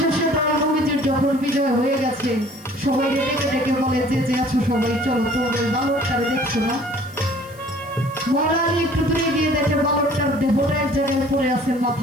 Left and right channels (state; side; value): noise; left; hiss, 24 dB below the sound